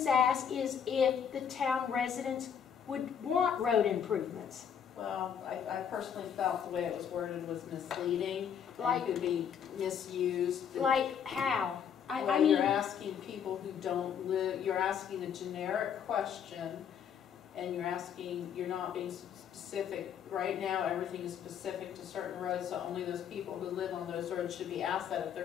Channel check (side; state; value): right; quieter; 8.0 dB